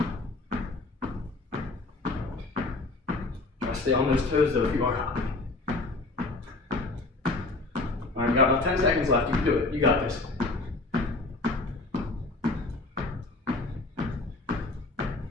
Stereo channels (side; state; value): right; quieter; 3.3 dB